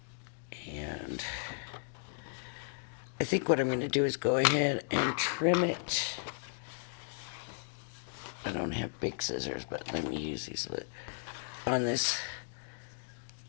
and I think what I'm going to do is go ahead and trim it. I don't have big scissors, but let me use these on this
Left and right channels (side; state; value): right; silent; digital silence